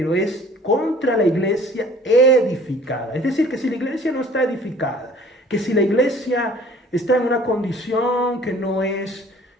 es contra la iglesia edificada. Es decir, que si la iglesia no está edificada, que si la iglesia está en una condición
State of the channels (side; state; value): both; normal; correlation 0.52